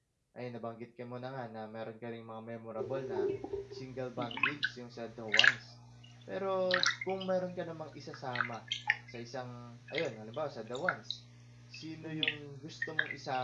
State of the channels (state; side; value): identical; both; correlation 1.00